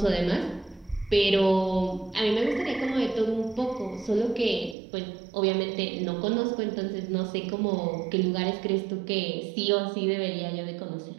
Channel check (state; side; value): drops out; left; at 4.8 s